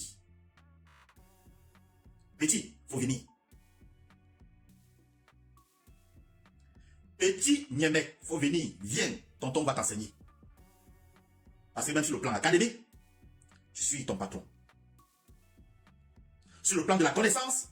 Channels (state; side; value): identical; both; correlation 1.00